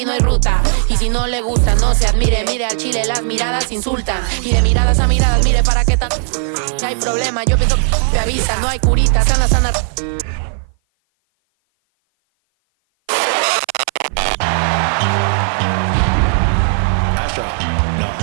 no hay ruta. Y si no le gusta, no se admire. Mire al chile, las miradas insultan. Y de miradas a miradas, mire para qué tan... hay problema, yo pienso que avisa. No hay curita, sana, sana.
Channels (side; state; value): left; silent; 56 dB below the other